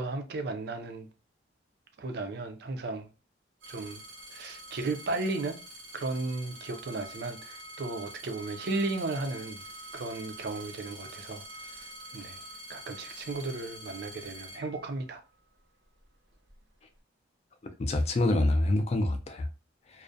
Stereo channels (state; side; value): normal; both; correlation 0.59